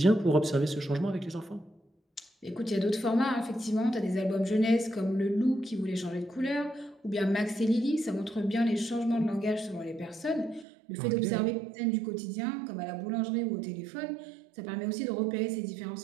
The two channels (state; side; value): drops out; left; at 10.7 s